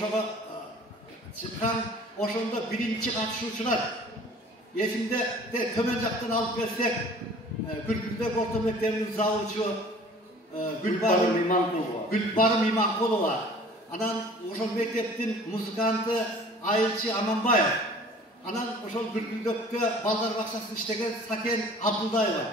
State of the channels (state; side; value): normal; both; correlation 0.48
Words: чыккан, ошондо биринчи катышуучулар эсимде төмөн жактан алып келсек, Күлкүлдөк орто мектебинин завучу Гүлбарым Иманкулова, анан ошол мектептин музыканты Айылчы Аманбаев, анан ошол Күлкүлдөктө балдар бакчасында иштеген Сакен Абдулдаева,